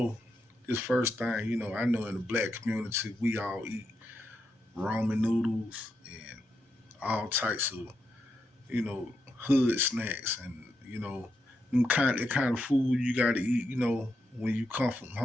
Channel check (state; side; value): normal; both; correlation 0.83